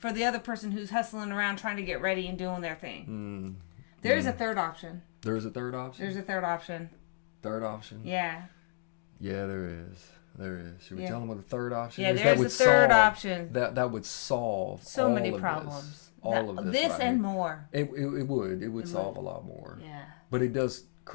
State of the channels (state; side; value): silent; right; digital silence